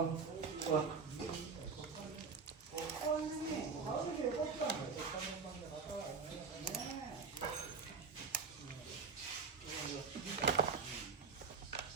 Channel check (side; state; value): left; quieter; 5.1 dB